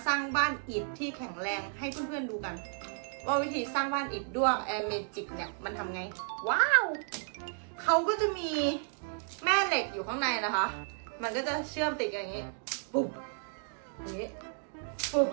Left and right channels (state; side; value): silent; left; 56 dB below the other